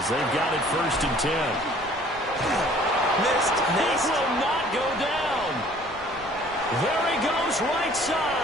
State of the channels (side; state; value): right; noise; rumble, 21 dB below the sound